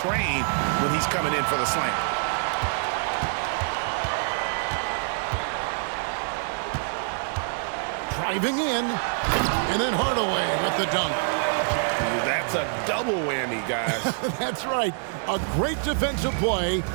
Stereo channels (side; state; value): left; silent; 61 dB below the other